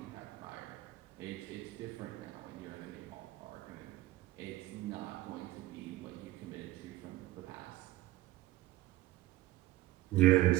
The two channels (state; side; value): quieter; left; 16.8 dB